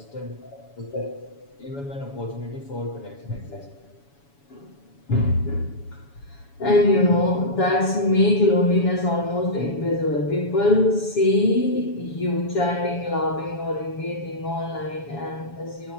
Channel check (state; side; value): late; right; 7.1 ms